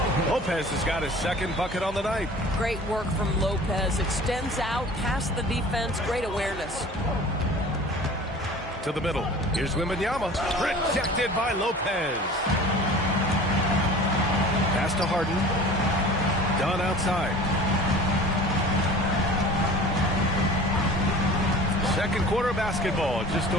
Lopez has got his second bucket on the night. Great work from Lopez. Extends out past the defense. Great awareness. To the middle. Here's Wembanyama. Rejected by Lopez. Pass to Harden. Done outside. Second quarter basketball. Just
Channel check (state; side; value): normal; both; correlation 0.42